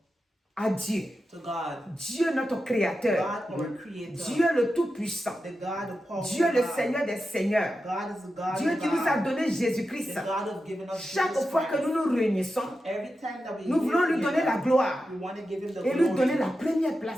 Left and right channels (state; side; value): normal; both; correlation 0.90